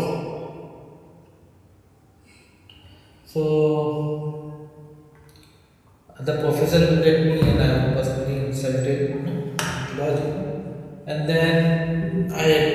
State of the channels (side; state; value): both; identical; correlation 1.00